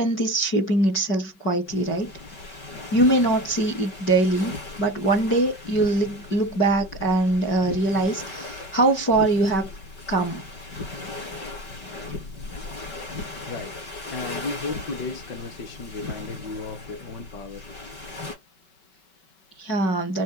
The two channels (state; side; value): late; right; 5.3 ms